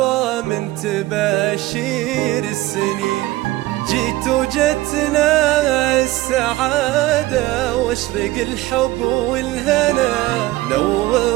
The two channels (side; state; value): left; quieter; 18.1 dB